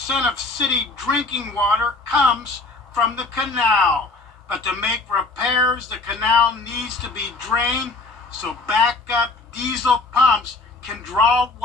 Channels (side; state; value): right; quieter; 3.5 dB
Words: of city drinking water comes from the canal. But to make repairs, the canal needs to be drained so backup diesel pumps can draw